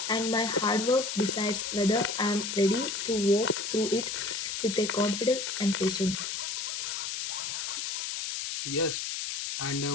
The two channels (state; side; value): noise; left; hiss, 3 dB below the sound